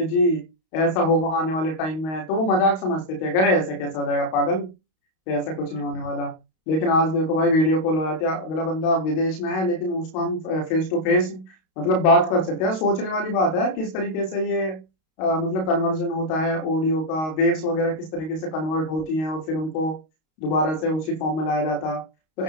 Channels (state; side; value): late; right; 32 ms